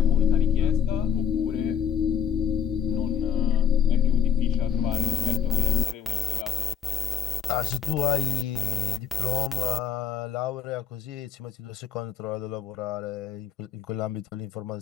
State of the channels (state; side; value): quieter; right; 8.1 dB